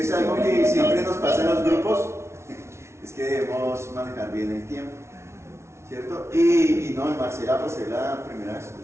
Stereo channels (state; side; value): late; left; 0.13 ms